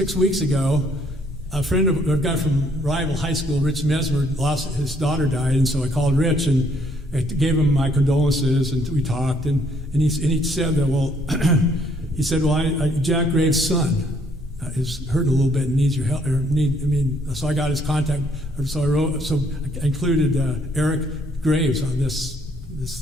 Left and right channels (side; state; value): both; normal; correlation 0.66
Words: weeks ago, a guy from rival high school, Rich Mesmer, his daughter died, and so I called Rich and I gave him my condolences, and we talked, and he said that, Jack Graves' son is hurting a little bit and needs your help. So I got his contact. So I included Eric Graves on this